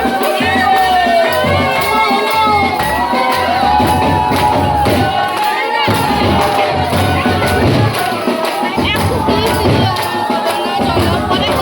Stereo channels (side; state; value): both; identical; correlation 1.00